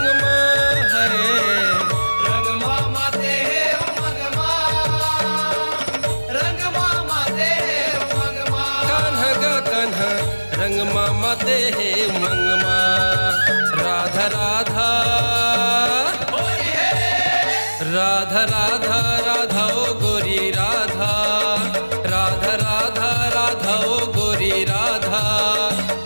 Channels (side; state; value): both; inverted; correlation -1.00